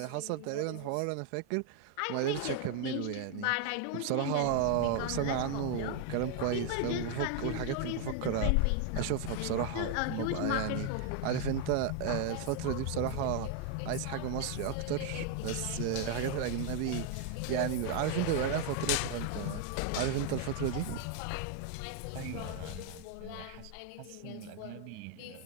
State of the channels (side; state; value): both; different; correlation 0.00